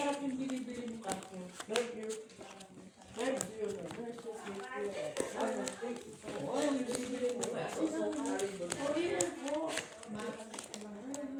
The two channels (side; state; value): both; identical; correlation 1.00